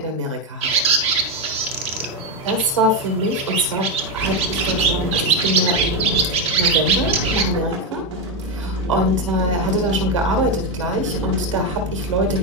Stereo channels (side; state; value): both; normal; correlation 0.08